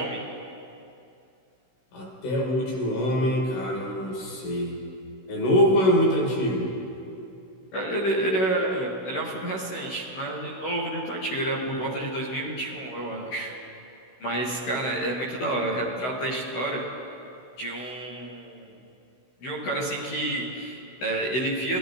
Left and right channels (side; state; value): right; late; 16 ms